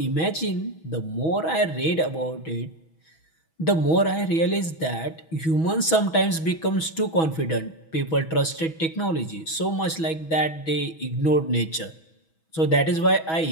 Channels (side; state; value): right; late; 6.2 ms